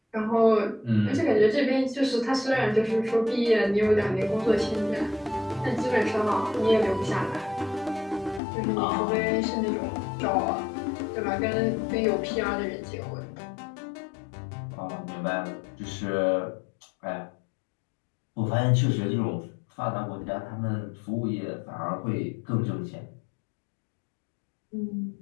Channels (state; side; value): drops out; right; at 8.4 s